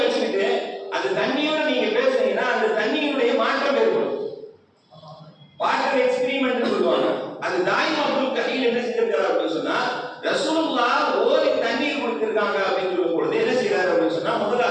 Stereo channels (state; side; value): identical; both; correlation 1.00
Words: வச்சுக்கிட்டு அந்த தண்ணியோட நீங்க பேசுனீங்கன்னா அந்த தண்ணியினுடைய மாற்றம் ஏற்படும். வாட்டர் எக்ஸ்பெரிமெண்ட் சொல்லுவாங்க. அது தாயிம் அப்துல் கஹீல் என்ன செஞ்சிருக்காரு அப்படின்னு சொன்னா ரசூலுல்லாஹ் ஓதி தண்ணீர் கொடுத்திருக்காங்க அப்படின்னு சொல்லும் பொழுது என்ன செய்யறாரு அப்படின்னு சொன்னா முதல்ல